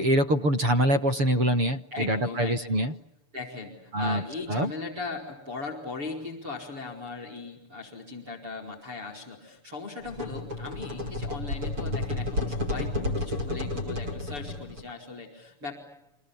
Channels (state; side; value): late; left; 6.9 ms